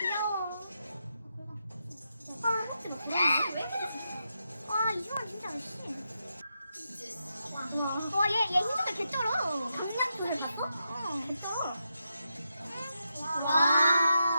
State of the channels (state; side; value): inverted; both; correlation -0.85